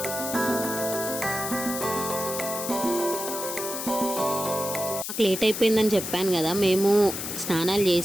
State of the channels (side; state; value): left; noise; hiss, 5 dB below the sound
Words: లేట్ అయిపోయిందని చెప్పాను కదా, మేము స్నానాలు